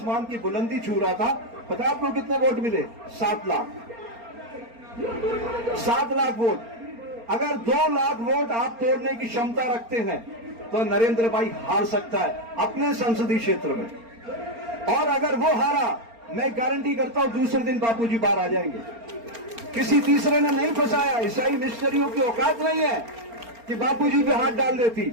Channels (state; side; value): late; left; 4.3 ms